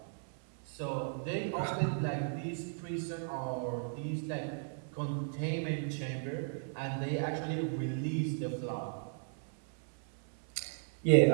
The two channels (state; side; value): silent; left; 54 dB below the other